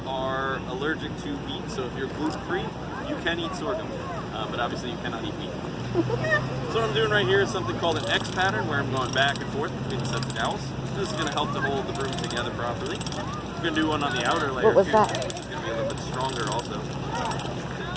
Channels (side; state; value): both; identical; correlation 1.00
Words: are allergic to wheat, so if you're gluten-free, you can eat sorghum. But obviously you cannot eat wheat. So what I'm doing right here is something called an X pattern, where I'm going back and forth between the sets of dowels. This is going to help to hold the broom together properly. I'm going to do one on the outer layer too, that? which is going to be a little bit stronger also.